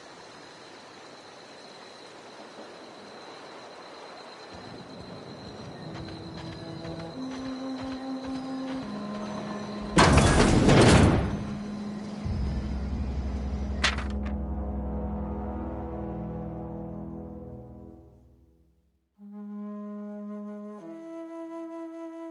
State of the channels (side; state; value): both; identical; correlation 1.00